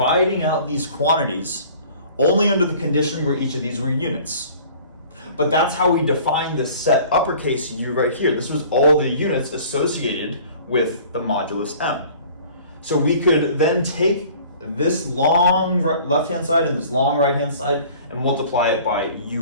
out these quantities only under the condition where each of these were units. But that's how we define the set uppercase U right here. This was all the units associated with the modulus m. So we could then take this long left-hand side and this long right-hand side and multiply it by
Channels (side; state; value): both; inverted; correlation -0.49